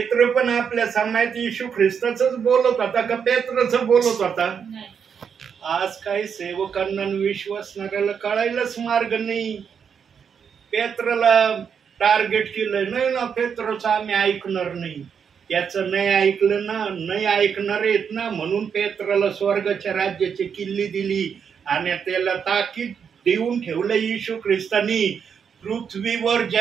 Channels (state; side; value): quieter; left; 7.0 dB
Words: पण आपल्या समाजात येशू ख्रिस्ताचंच बोलत होता का पेत्रचं बोलत होता? आज काही सेवकांना विश्वासणाऱ्याला कळायलाच मार्ग नाही. पेत्रला टार्गेट केलं, नाही ना पेत्रचं आम्ही ऐकणार नाही. त्याचं नाही ऐकलं ना, नाही ऐकणार आहेत ना, म्हणून पेत्राला स्वर्गाच्या राज्याची किल्ली दिली आणि त्याला ताकीद देऊन ठेवलं येशू ख्रिस्तानी. पृथ्वीवर